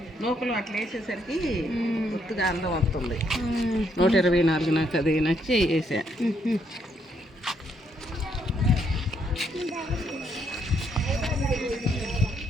నూకలు అట్లా వేసేసరికి గుర్తుగా అందం వస్తుంది. 124 నాకు అది నచ్చి వేసా.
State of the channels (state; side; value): normal; both; correlation 0.73